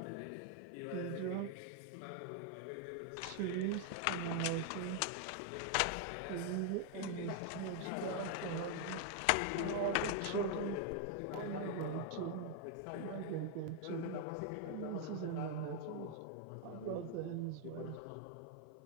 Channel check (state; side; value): different; both; correlation 0.00